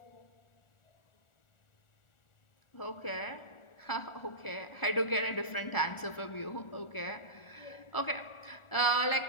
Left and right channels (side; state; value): right; late; 1.4 ms